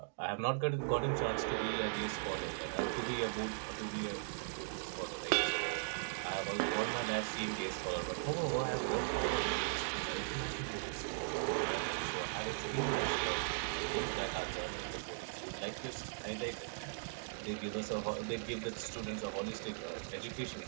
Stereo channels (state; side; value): silent; left; digital silence